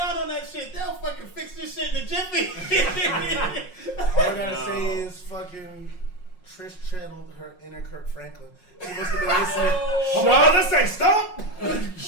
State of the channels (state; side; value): late; right; 5.5 ms